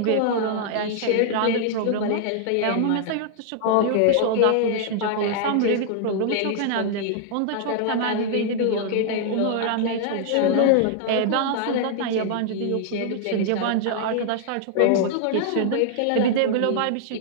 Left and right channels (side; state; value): both; different; correlation -0.01